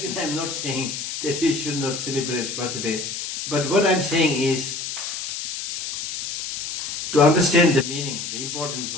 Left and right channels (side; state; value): left; noise; hiss, 5 dB below the sound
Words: saying that you should not celebrate birthday. But what I am saying is, to understand the meaning, the importance